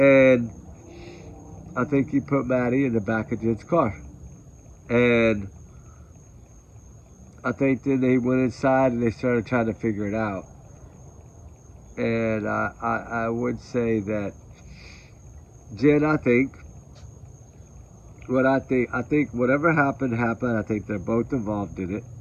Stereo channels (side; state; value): both; identical; correlation 1.00